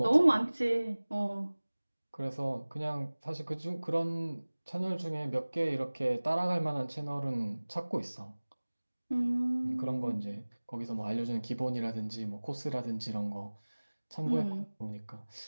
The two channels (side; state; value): both; inverted; correlation -1.00